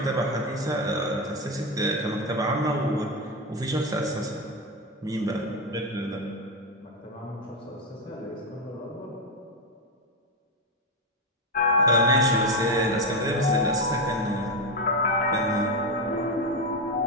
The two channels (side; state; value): both; normal; correlation 0.11